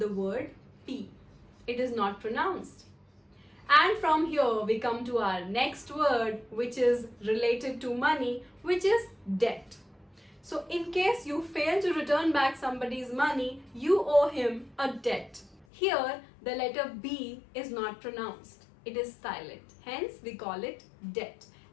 word P. it is not pronounced. And from here we come to our next word, which is related to money, which is debt. So in case you fail to return back somebody's money, you owe him a debt. Here the letter B is not pronounced. It is silent. Hence we call it debt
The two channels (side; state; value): right; drops out; at 15.7 s